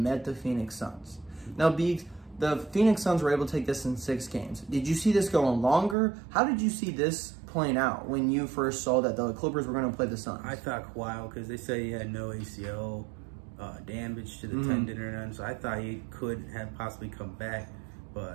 the Phoenix Suns. Now, the Phoenix Suns were able to take this in 6 games. Did you see this going longer? How did you see this playing out when you first saw that the Clippers were going to play the Suns? I thought Kawhi, because they said he had no ACL damage to the tendon or none, so I thought he could have possibly come back,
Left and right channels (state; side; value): drops out; left; at 6.0 s